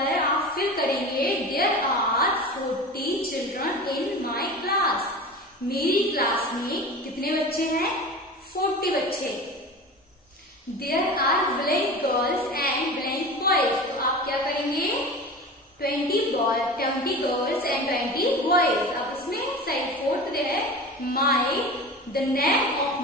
आप फिल करेंगे there are 40 children in my class. मेरी क्लास में कितने बच्चे हैं, 40 बच्चे। There are blank girls and blank boys. तो आप क्या करेंगे, 20 गर्ल्स एंड 20 बॉयज। अब इसमें साइड 4th दे है my, the name of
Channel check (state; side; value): normal; both; correlation 0.33